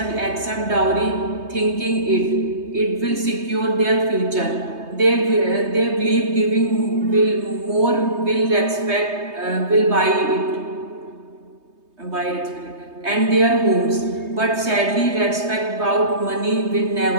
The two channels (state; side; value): late; left; 3.2 ms